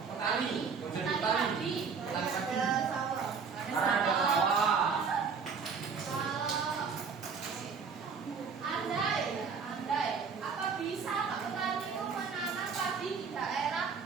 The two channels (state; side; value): quieter; left; 5.6 dB